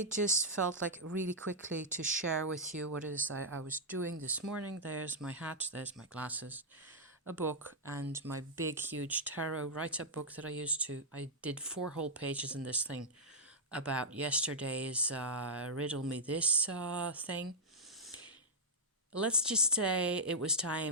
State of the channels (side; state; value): both; normal; correlation -0.07